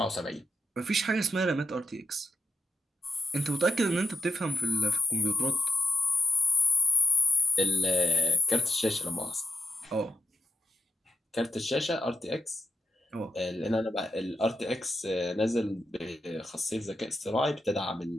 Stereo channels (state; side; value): normal; both; correlation 0.79